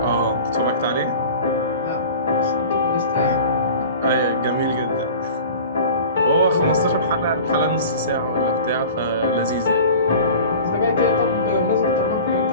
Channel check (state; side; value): inverted; both; correlation -0.40